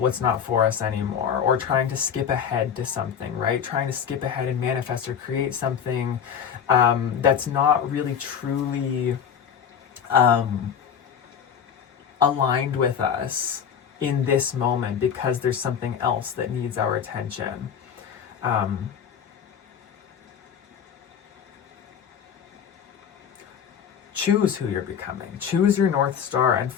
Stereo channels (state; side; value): quieter; right; 7.8 dB